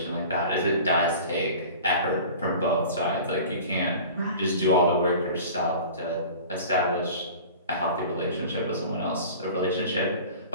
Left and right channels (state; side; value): inverted; both; correlation -0.40